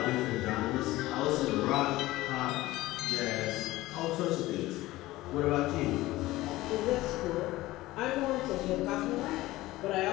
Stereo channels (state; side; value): quieter; right; 17.8 dB